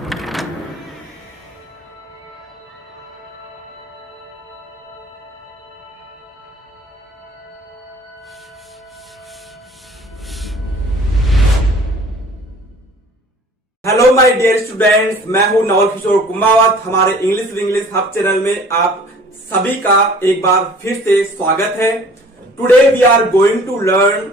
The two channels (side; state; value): both; normal; correlation 0.50